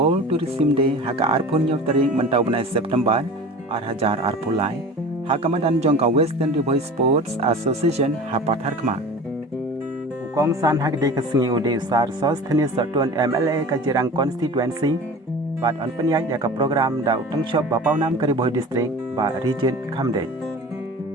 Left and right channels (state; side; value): normal; both; correlation 0.38